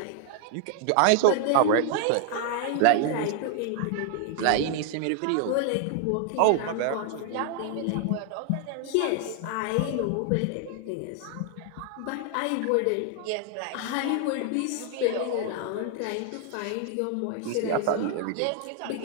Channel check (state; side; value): different; both; correlation 0.00